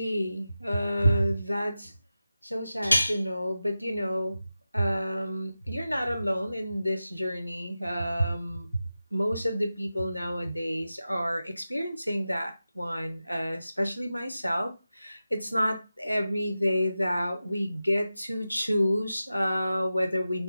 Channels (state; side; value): inverted; both; correlation -0.93